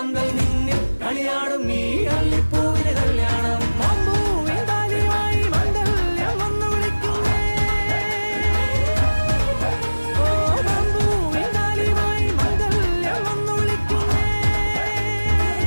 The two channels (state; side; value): inverted; both; correlation -1.00